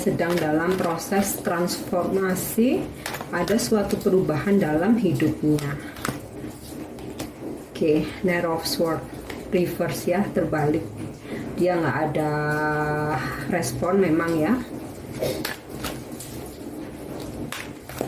dalam proses transformasi, ada suatu perubahan dalam hidupnya. Oke, Knight of Swords reverse ya, terbalik. Dia nggak ada respon memang ya.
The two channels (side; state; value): both; identical; correlation 1.00